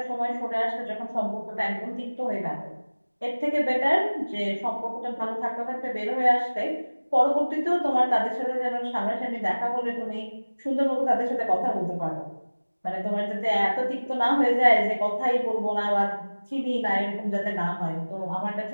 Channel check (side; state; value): both; inverted; correlation -1.00